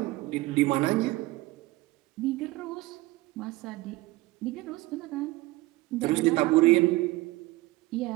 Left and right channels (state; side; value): quieter; left; 19.8 dB